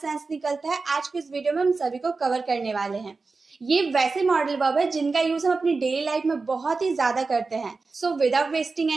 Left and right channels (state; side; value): quieter; left; 4.1 dB